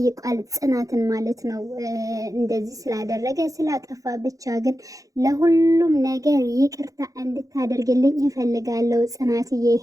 ጽናትን ማለት ነው። እንደዚህ ስላደረገ ስላጠፋ ብቻ ግን ለሁሉም ነገር ይቅርታ እንድታደርግልኝ እፈልጋለሁ ጽናትዬ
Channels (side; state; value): left; late; 0.17 ms